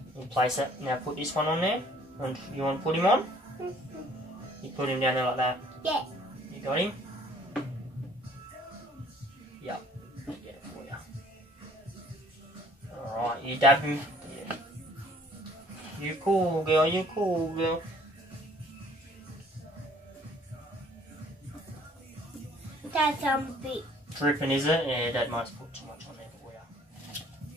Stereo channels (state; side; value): normal; both; correlation 0.58